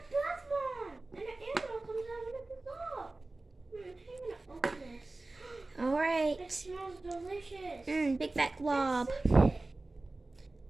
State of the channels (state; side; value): quieter; left; 3.1 dB